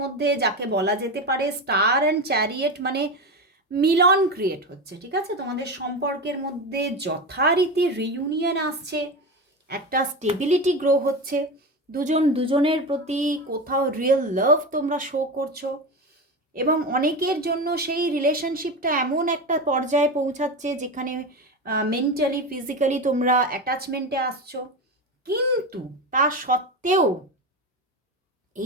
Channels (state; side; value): normal; both; correlation 0.21